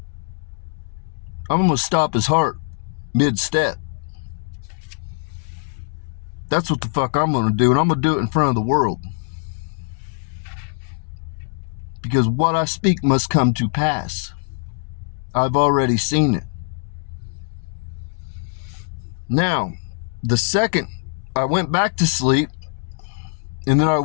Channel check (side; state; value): right; silent; digital silence